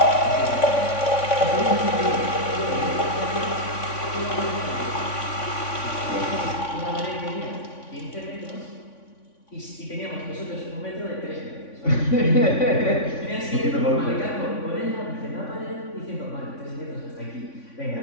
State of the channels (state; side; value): late; right; 3.5 ms